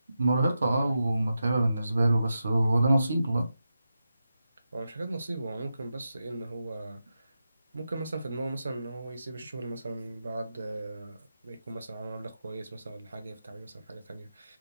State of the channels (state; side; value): inverted; both; correlation -0.89